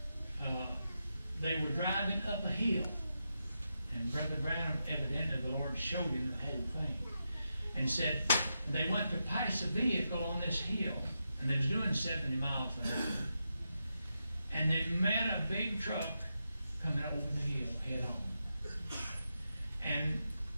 they were driving up a hill. And Brother Branham, evidently the Lord showed him the whole thing. And said they went to pass a vehicle on this hill, and they was doing 70 miles an hour. And they met a big truck coming over the hill head on. And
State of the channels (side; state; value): both; inverted; correlation -0.86